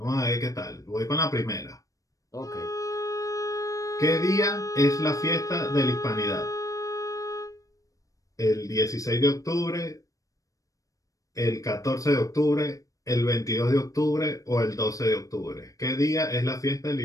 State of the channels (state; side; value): late; right; 0.16 ms